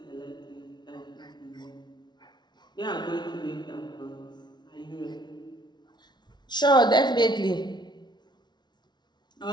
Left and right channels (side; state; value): right; late; 0.20 ms